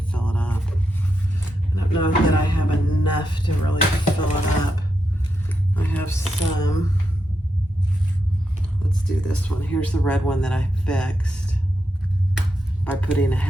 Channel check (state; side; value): normal; both; correlation 0.85